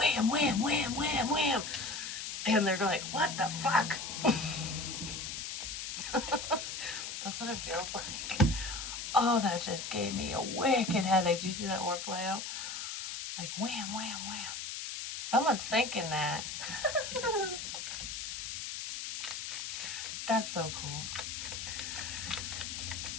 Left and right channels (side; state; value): left; noise; hiss, 6 dB below the sound